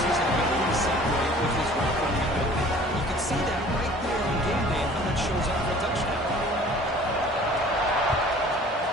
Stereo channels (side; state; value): both; normal; correlation 0.49